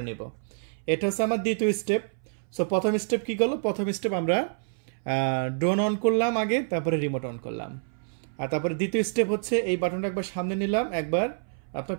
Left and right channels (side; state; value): left; silent; 60 dB below the other